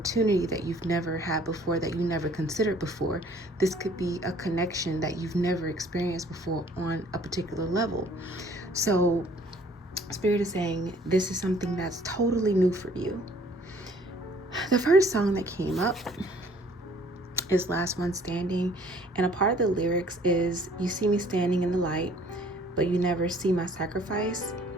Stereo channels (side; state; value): both; normal; correlation 0.57